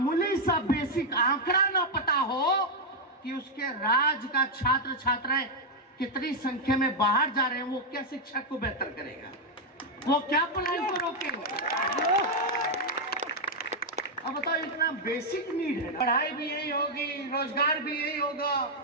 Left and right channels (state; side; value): normal; both; correlation 0.00